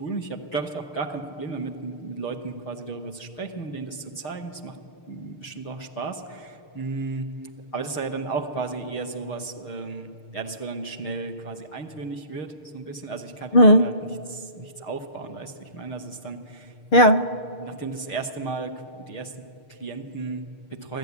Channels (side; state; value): right; late; 6.6 ms